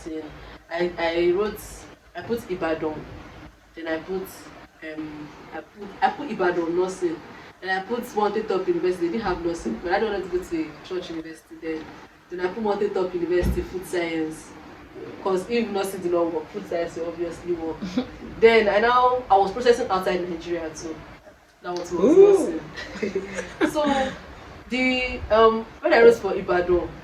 I put Ibadan. Then I put Ibadan nursing. And I put Wanted Top University. They didn't have nursing, but I don't want to go to a church university then. Then I put Wanted Top University food science. Because if nursing did not work, food science will obviously work. Then I was processing outside Nigeria too. That was nursing. So when I wrote for Ibadan,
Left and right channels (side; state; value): both; identical; correlation 1.00